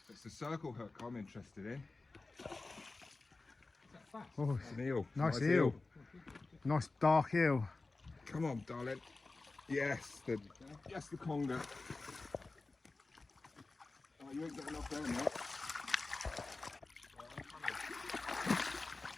It's the circle hook I'm interested in. Oh, It's an eel. nice eel. Nice dark eel. Come on, darling. Yes, the conger. Oh, you ain't getting off there, mate.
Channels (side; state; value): right; quieter; 3.5 dB